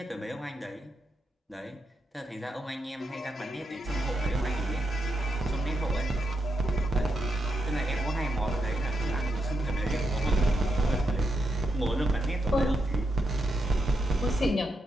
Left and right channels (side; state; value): both; normal; correlation 0.84